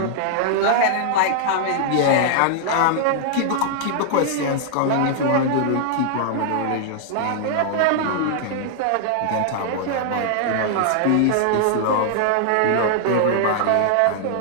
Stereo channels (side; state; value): both; different; correlation -0.01